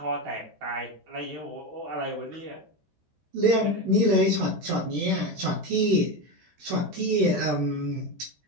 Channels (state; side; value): late; left; 13 ms